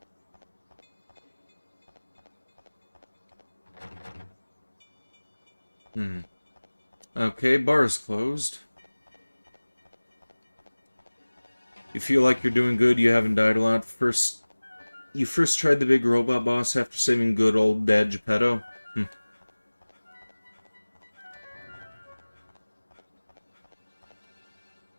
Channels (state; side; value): inverted; both; correlation -1.00